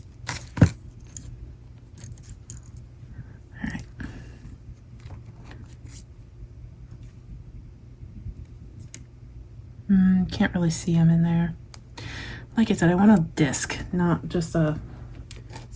Can't really see them in there. Like I said, I want a disc, not just a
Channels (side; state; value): both; identical; correlation 1.00